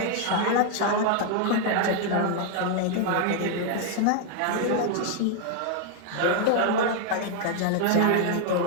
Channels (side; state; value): both; different; correlation 0.00